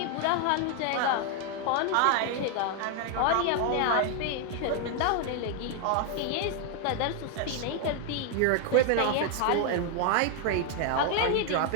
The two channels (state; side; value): different; both; correlation 0.00